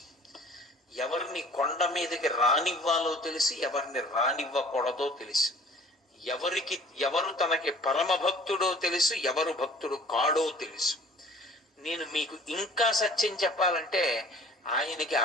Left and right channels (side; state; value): both; normal; correlation 0.49